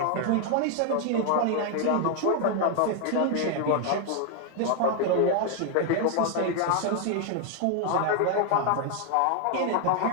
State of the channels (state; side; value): different; both; correlation 0.00